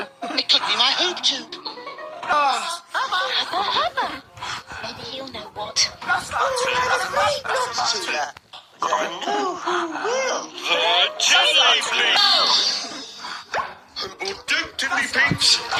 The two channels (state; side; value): identical; both; correlation 1.00